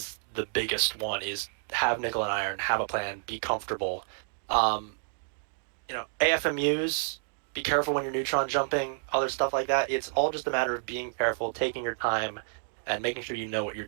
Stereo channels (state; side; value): silent; left; digital silence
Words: the biggest one. Is have nickel and iron, have a plan, be comfortable. AFMUs. Be careful when you're neutron jumping, other stuff like that. It's all just a matter of being careful, taking your time, and making sure you know what you're